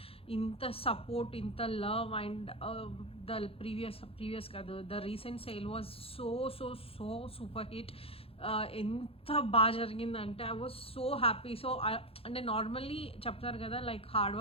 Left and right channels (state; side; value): late; right; 0.27 ms